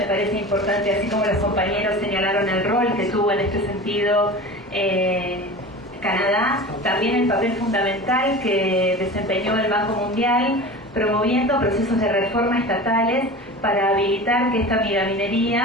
parece importante, así como los compañeros señalaron el rol que tuvo en este sentido Canadá, también el papel fundamental que desempeñó el Banco Mundial promoviendo procesos de reforma estatales para habilitar que esta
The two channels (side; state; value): both; normal; correlation 0.34